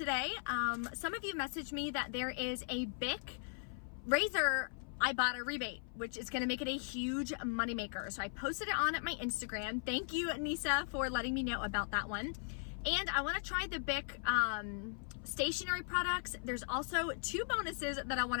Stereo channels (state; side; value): silent; right; 52 dB below the other